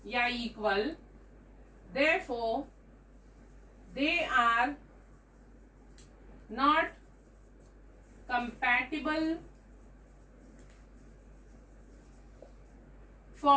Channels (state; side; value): identical; both; correlation 1.00